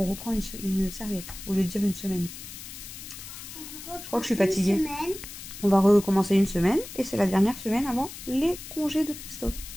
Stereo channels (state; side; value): noise; left; hiss, 12 dB below the sound